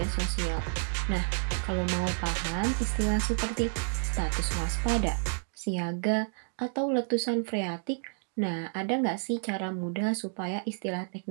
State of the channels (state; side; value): silent; left; digital silence